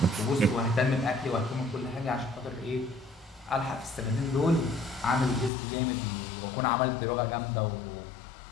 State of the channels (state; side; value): drops out; right; at 5.5 s